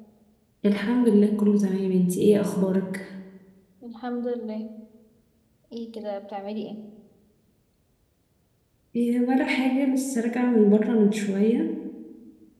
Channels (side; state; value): both; identical; correlation 1.00